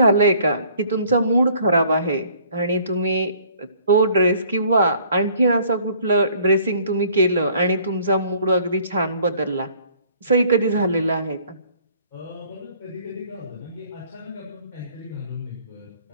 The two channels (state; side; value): inverted; both; correlation -0.57